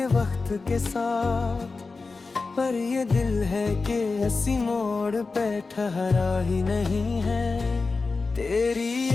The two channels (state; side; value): quieter; right; 4.0 dB